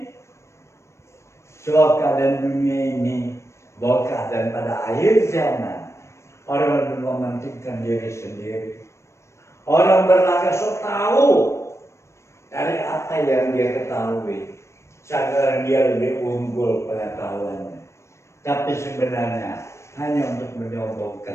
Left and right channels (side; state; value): right; late; 0.13 ms